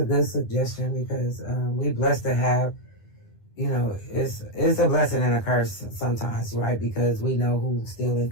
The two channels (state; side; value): late; right; 9.9 ms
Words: good suggestion because we blessed to have, you know, it's a blessing and a curse sometimes, right? Because we know who's still in